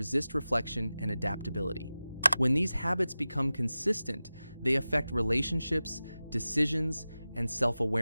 reflection and adaptability. When these habits become consistent, they affect relationships, decisions, and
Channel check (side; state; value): both; inverted; correlation -0.96